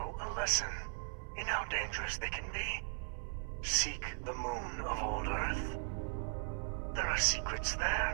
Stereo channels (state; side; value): silent; left; 52 dB below the other